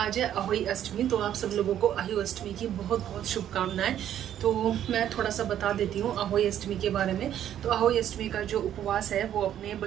है अहोई अष्टमी, तो आप सब लोगों को अहोई अष्टमी की बहुत बहुत शुभकामनाएं। तो मैं थोड़ा सा बता देती हूँ अहोई अष्टमी के बारे में। तो अहोई अष्टमी का जो उपवास है वो अपने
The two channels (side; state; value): left; quieter; 10.7 dB